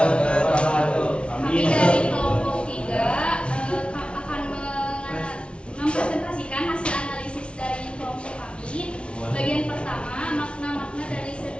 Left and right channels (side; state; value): right; late; 0.059 ms